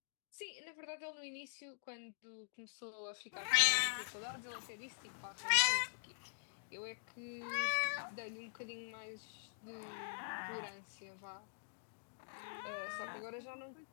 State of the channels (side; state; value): right; silent; digital silence